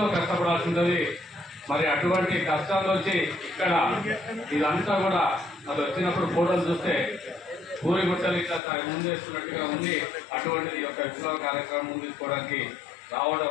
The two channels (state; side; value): drops out; right; at 8.6 s